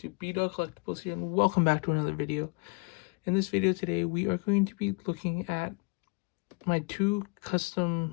B-Dog Collectibles here, and welcome back to another video. In this video today, we are going to be looking at my two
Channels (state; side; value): quieter; right; 31.0 dB